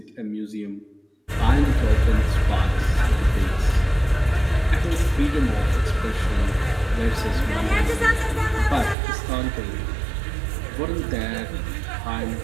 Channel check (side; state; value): left; drops out; at 9.0 s